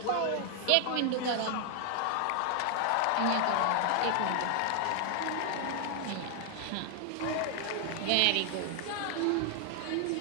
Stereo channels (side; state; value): both; different; correlation 0.00